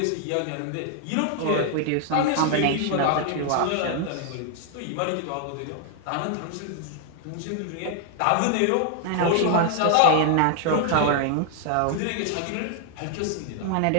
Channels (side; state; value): both; different; correlation 0.00